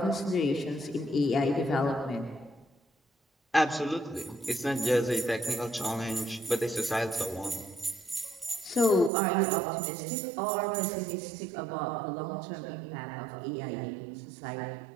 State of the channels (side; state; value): left; drops out; at 9.1 s